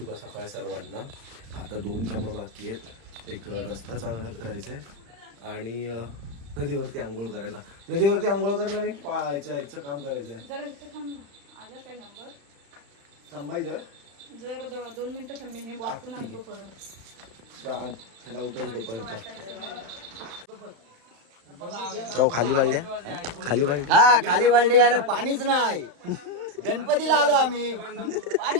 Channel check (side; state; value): left; late; 35 ms